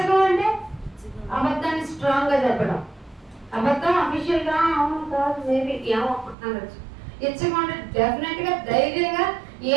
అంటే అబద్ధాన్ని స్ట్రాంగ్ గా చెప్పడం. అబద్ధం అఫీషియల్ గా అవును కాదు మేబీ ఏమో అనొచ్చు. ఇచ్చకం డెఫినెట్ గా ధైర్యంగా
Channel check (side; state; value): left; drops out; at 6.4 s